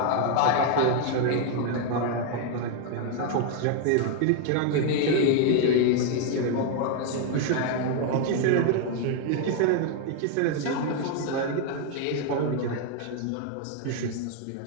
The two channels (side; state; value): both; different; correlation 0.01